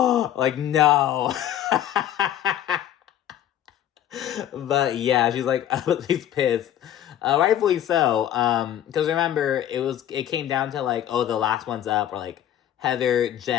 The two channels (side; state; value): right; quieter; 11.1 dB